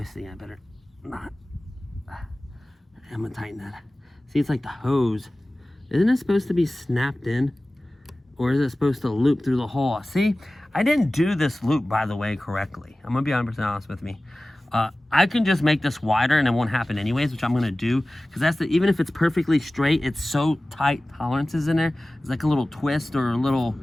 I better not. I'm going to tighten that. See, it's like the hose. Isn't it supposed to be snapped in? Or is it supposed to loop through the hole? See, I didn't do this loop, by the way, correctly. I'm going to be 100% honest with me. I can just make this wider and it won't happen anyways, which I'm going to do. Because that's even if it's perfectly straight, it's so tight tolerances in there. It's like a little twist or a little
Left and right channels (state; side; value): normal; both; correlation 0.97